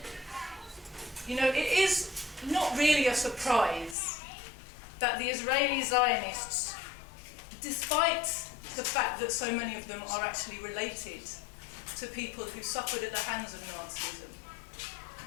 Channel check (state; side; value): drops out; right; at 4.0 s